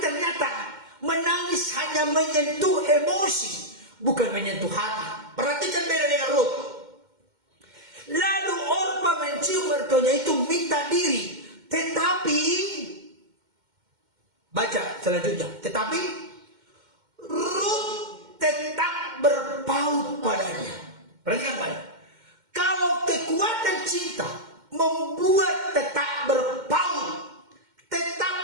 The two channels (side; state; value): left; late; 2.1 ms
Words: menangis hanya menyentuh emosi, bukan menyentuh hati. Perhatikan beda dengan Ruth. Lalu Orpa mencium mertuanya itu, minta diri. Tetapi, baca selanjutnya. Tetapi Ruth tetap berpaut padanya. Perhatikan baik. Kalau kekuatan cinta membuat tetap berpaut,